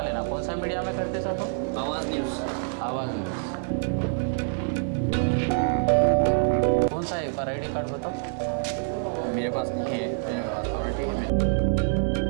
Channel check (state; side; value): silent; left; 61 dB below the other